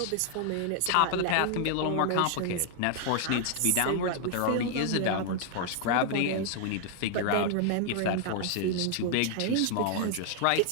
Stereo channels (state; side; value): different; both; correlation 0.00